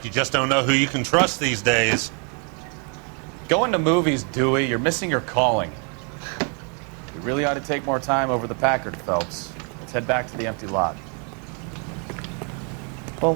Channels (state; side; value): quieter; left; 38.1 dB